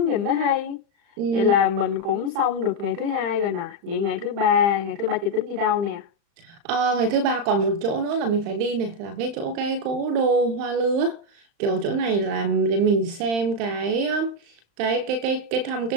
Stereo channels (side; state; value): left; late; 35 ms